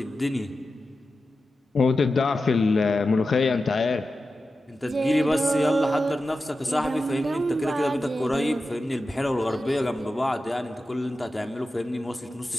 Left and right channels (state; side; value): normal; both; correlation 0.92